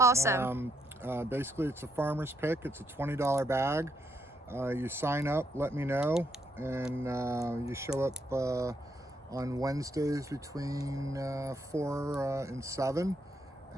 Basically, it's a farmer's pick. It's a $20 bag. You sign up, let me know, and you show up on Wednesdays between 4 and 7,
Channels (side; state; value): both; normal; correlation 0.76